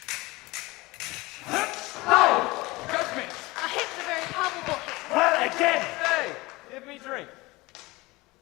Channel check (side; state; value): right; quieter; 21.8 dB